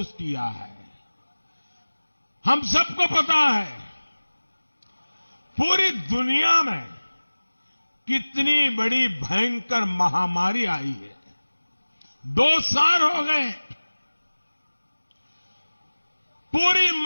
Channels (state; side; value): inverted; both; correlation -1.00